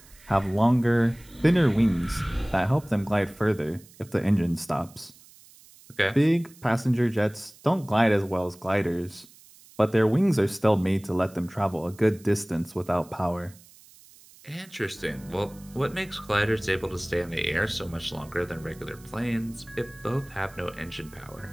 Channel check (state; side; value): noise; right; hiss, 24 dB below the sound